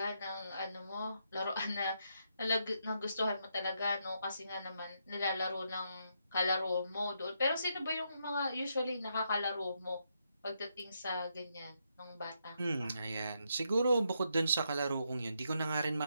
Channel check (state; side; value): inverted; both; correlation -0.79